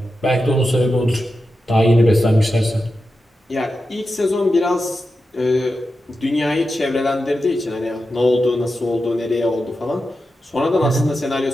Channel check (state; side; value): normal; both; correlation 0.90